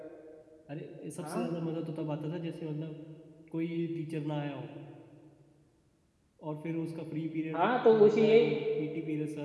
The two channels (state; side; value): identical; both; correlation 1.00